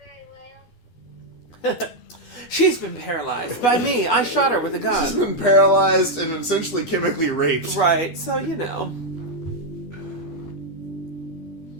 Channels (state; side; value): late; right; 12 ms